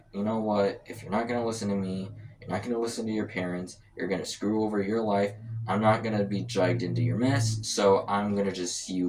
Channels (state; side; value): identical; both; correlation 1.00